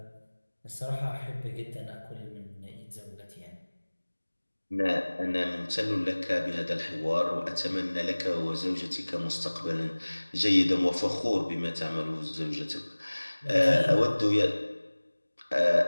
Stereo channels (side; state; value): both; inverted; correlation -1.00